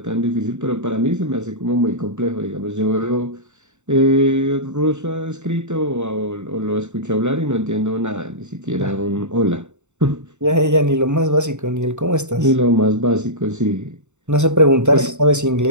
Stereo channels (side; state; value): left; late; 0.84 ms